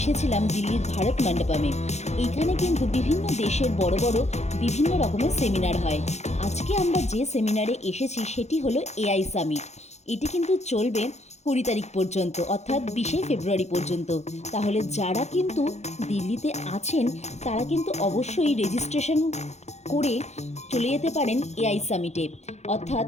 দিল্লির ভারত মণ্ডপমে। এইখানে কিন্তু বিভিন্ন দেশের বড় বড় বিভিন্ন রকমের সেমিনার হয়। আজকে আমরা যে সেমিনারে এসেছি সেটি হলো এআই সামিট। এটি কিন্তু চলবে 20 তারিখ পর্যন্ত, অর্থাৎ 20 ফেব্রুয়ারি পর্যন্ত। তাহলে যারা কিন্তু দিল্লিতে আছেন তারা কিন্তু অবশ্যই রেজিস্ট্রেশন করে চলে যেতে পারেন এআই সামিটে। অর্থাৎ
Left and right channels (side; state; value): right; late; 0.32 ms